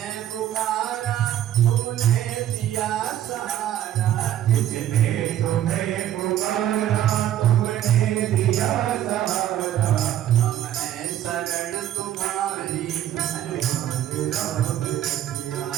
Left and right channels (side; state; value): left; quieter; 11.6 dB